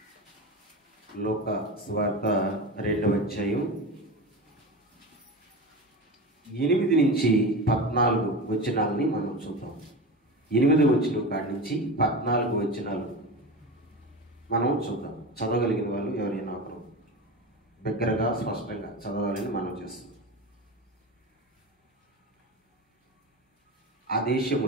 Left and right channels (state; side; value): normal; both; correlation 0.26